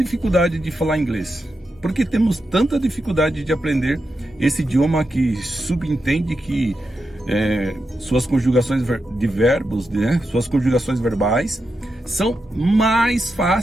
de falar inglês? Por que temos tanta dificuldade de aprender esse idioma que subentende que suas conjugações de verbos, né, suas conjugações verbais, são mais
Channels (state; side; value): normal; both; correlation 0.87